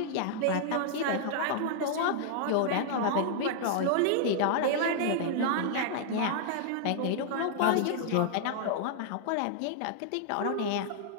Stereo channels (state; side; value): different; both; correlation -0.01